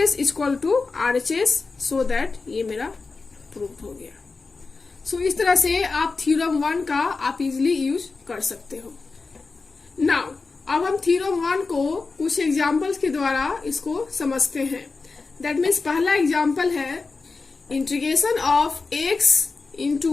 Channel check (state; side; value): quieter; right; 4.1 dB